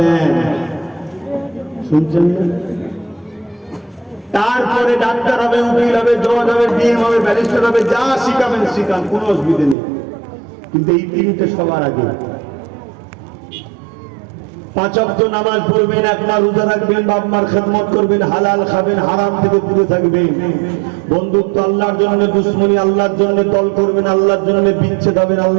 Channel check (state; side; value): drops out; left; at 9.8 s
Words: শুনছেন? তারপরে ডাক্তার হবে, উকিল হবে, জজ হবে, ডিএম হবে, ব্যারিস্টার হবে, যা শিখাবেন শিখান, কোনো অসুবিধা নেই। কিন্তু এই 3টে সবার আগে। 5 ওয়াক্ত নামাজ পড়বেন, 1 মাস রোজা রাখবেন, বাপ মার খেদমত করবেন, হালাল খাবেন, হারাম থেকে দূরে থাকবেন। বন্ধুত্ব আল্লাহর জন্য, দুশ্মনী আল্লাহর জন্য, দল করবেন আল্লাহর জন্য, বিচ্ছেদ হবেন